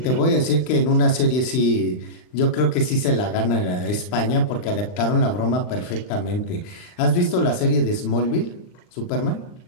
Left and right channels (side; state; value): right; late; 39 ms